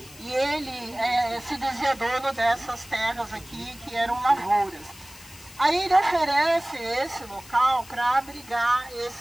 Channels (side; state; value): left; noise; hiss, 20 dB below the sound